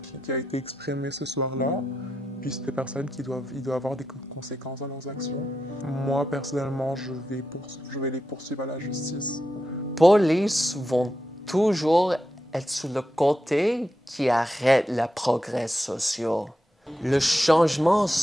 a été exprimé ce soir-là. Puis c'est des personnes qui doivent avoir des conséquences dans leurs actions. Moi, personnellement, je vais les poursuivre à la justice. Police vont toujours être sur le côté qui arrête le progrès social. Le changement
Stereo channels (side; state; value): both; normal; correlation 0.87